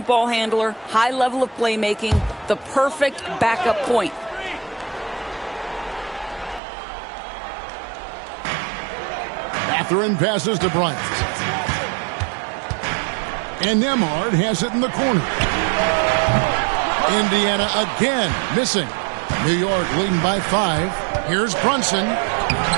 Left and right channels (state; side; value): drops out; left; at 6.6 s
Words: ball handler, high level of playmaking, the perfect backup point. Mathurin passes to Bryant. And Nembhard has it in the corner. Indiana again missing. New York leading by 5. Here's Brunson.